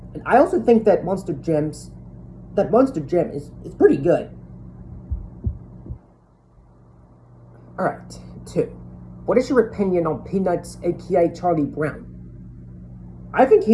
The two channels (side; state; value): both; identical; correlation 1.00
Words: and I also think that Monster Jam is pretty good. Alright, 2. What is your opinion on Peanuts, aka Charlie Brown? I think